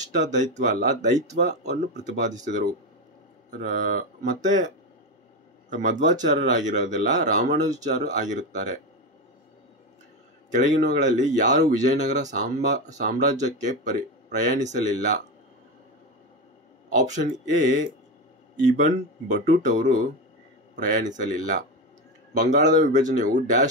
ದೈತ್ವ ಅಲ್ಲ, ದೈತ್ವವನ್ನು ಪ್ರತಿಪಾದಿಸಿದರು. ಮತ್ತೆ ಮಧ್ವಾಚಾರ್ಯರಾಗಿರೋದಿಲ್ಲ, ರಾಮಾನುಜಾಚಾರ್ಯ ಆಗಿರುತ್ತಾರೆ. ಕೆಳಗಿನವುಗಳಲ್ಲಿ ಯಾರು ವಿಜಯನಗರ ಸಾಮ್ರಾಜ್ಯಕ್ಕೆ ಪ್ರಯಾಣಿಸಲಿಲ್ಲ? ಆಪ್ಷನ್ ಎ, ಇಬನ್ ಬಟೂಟ್ ಅವರು ಪ್ರಯಾಣಿಸಲಿಲ್ಲ. ಬಂಗಾಳದ ವಿಭಜನೆಯು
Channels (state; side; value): normal; both; correlation 0.16